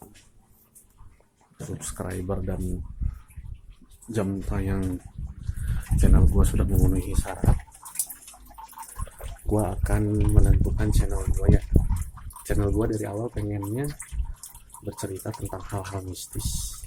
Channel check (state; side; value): identical; both; correlation 1.00